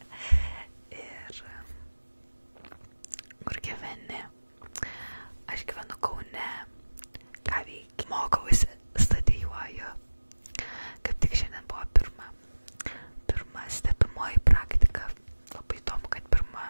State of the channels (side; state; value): both; inverted; correlation -1.00